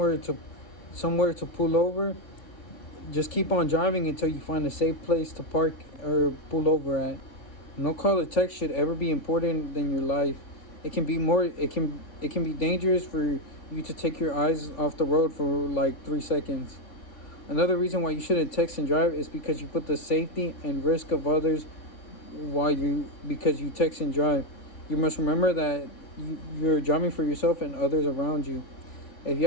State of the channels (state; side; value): late; right; 3.5 ms